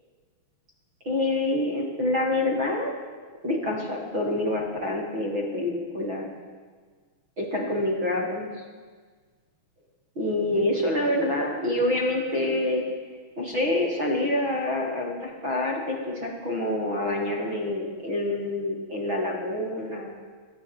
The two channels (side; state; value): left; late; 6.1 ms